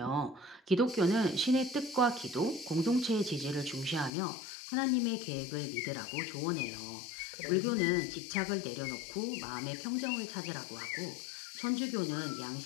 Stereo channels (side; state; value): right; drops out; at 4.1 s